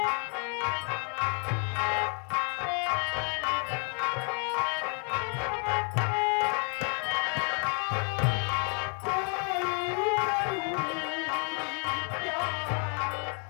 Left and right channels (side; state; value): right; quieter; 39.9 dB